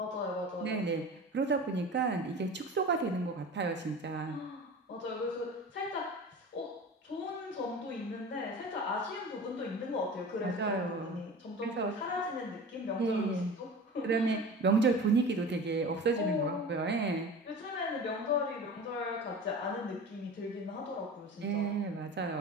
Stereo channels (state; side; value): normal; both; correlation 0.35